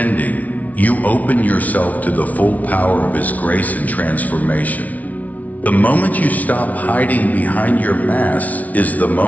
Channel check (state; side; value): late; right; 0.072 ms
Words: you open yourself to the full power of His grace and transformation. The moment you stop hiding behind your mask is the